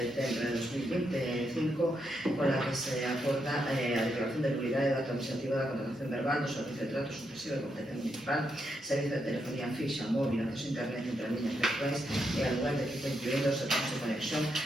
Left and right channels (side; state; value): both; normal; correlation 0.81